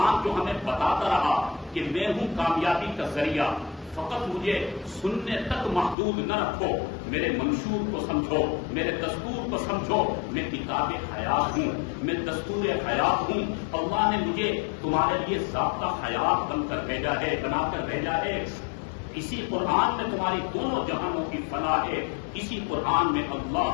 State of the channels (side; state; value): right; drops out; at 6.0 s